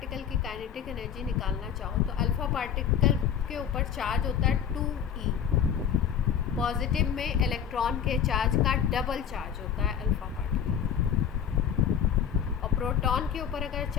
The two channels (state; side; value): quieter; right; 8.3 dB